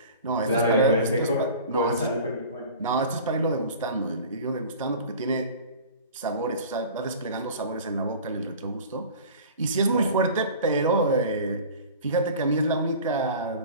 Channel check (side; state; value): both; inverted; correlation -0.40